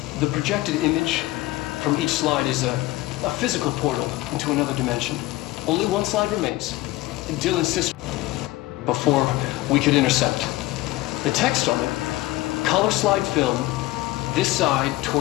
The projected image from each slide is a physical portal into another dimension. Only one slide remains. Dill insists before we could intercept. The text on it, color slide film, this side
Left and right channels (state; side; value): quieter; right; 18.4 dB